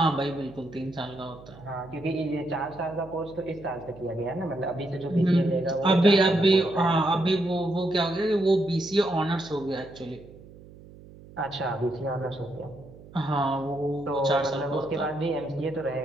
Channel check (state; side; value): noise; right; hum, 20 dB below the sound